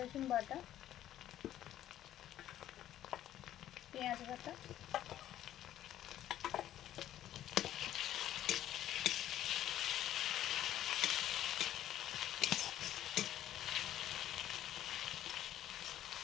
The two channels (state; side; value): quieter; right; 12.3 dB